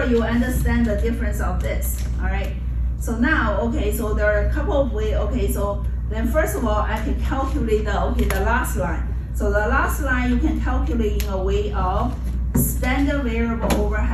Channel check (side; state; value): both; identical; correlation 1.00